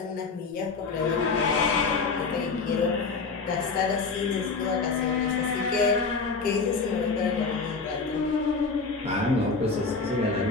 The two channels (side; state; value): right; quieter; 4.4 dB